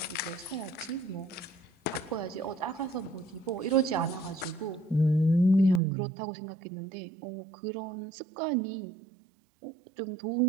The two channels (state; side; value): drops out; left; at 5.8 s